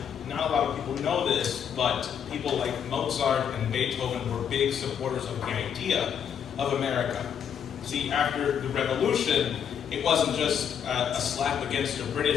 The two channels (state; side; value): quieter; right; 8.2 dB